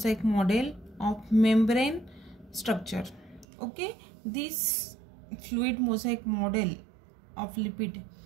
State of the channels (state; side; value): drops out; left; at 3.5 s